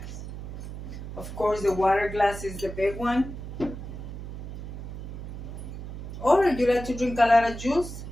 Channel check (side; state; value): right; noise; hum, 9 dB below the sound